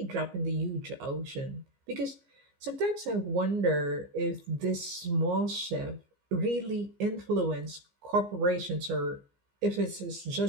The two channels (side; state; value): left; late; 15 ms